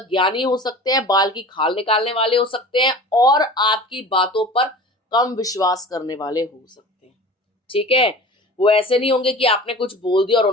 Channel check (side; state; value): both; normal; correlation 0.39